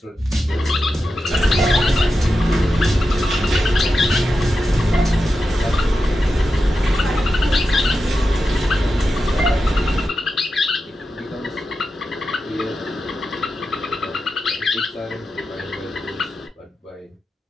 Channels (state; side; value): normal; both; correlation 0.90